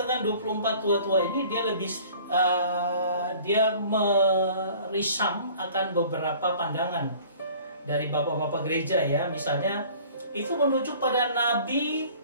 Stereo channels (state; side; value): inverted; both; correlation -0.49